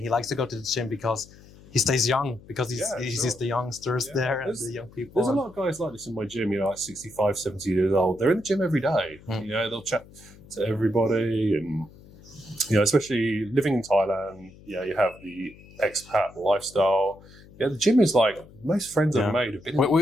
he likes to go to the gym because he stays young, because he sees the youngsters there and the young people. There's a lot of guys like this in my gym. Like 65, 70 years old. They're in the gym every day. They'll chat to everybody and. Especially living in Thailand, you have the expat lifestyle. The gym is like, most friends I've made have been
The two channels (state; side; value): noise; left; hum, 22 dB below the sound